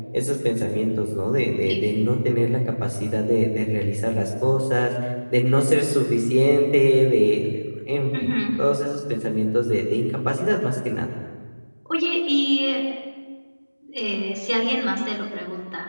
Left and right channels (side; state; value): both; inverted; correlation -1.00